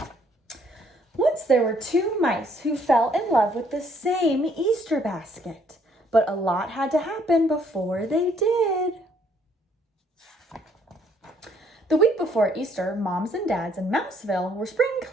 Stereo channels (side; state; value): both; normal; correlation 0.66